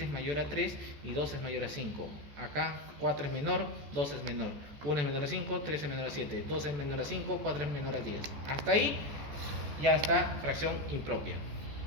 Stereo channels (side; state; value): left; late; 14 ms